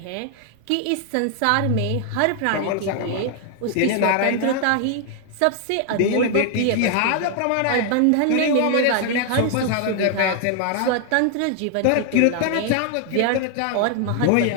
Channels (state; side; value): different; both; correlation 0.00